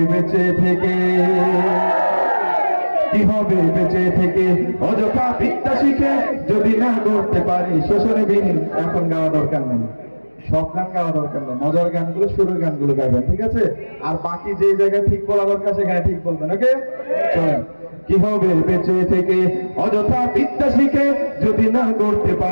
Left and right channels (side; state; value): both; inverted; correlation -1.00